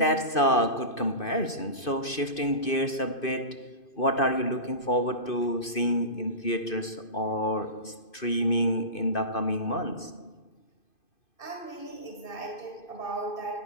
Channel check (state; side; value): late; right; 2.5 ms